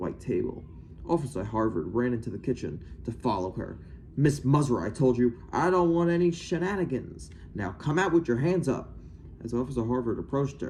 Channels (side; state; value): both; identical; correlation 1.00